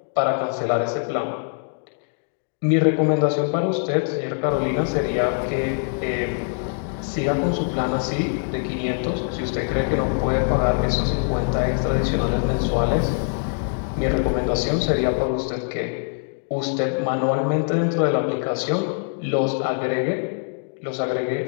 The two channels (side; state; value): right; silent; 63 dB below the other